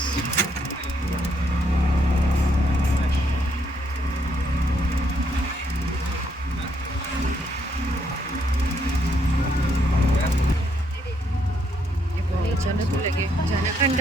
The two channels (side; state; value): both; normal; correlation 0.73